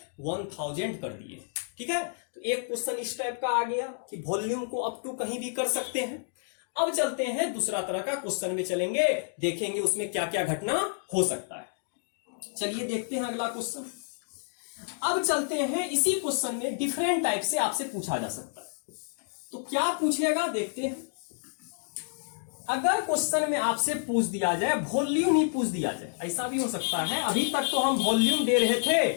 1000 कर दिए। ठीक है, तो एक क्वेश्चन इस टाइप का आ गया कि वॉल्यूम को अप टू कहीं भी कर सकते हैं। अब चलते हैं दूसरा तरह का क्वेश्चन में चलेंगे, देखेंगे उसमें क्या क्या घटना हो सकता है। चलिए देखते हैं अगला क्वेश्चन। अब चलते हैं इसी क्वेश्चन में डिफरेंट टाइप से आपसे पूछा जा सकता है, तो क्या पूछेगा देखते हैं। अगर क्वेश्चन में आपसे पूछ दिया जाए वॉल्यूम ही पूछ दिया जाए, ऐसा भी हो सकता है। अभी तक तो हम वॉल्यूम दे रहे थे,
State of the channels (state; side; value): silent; right; digital silence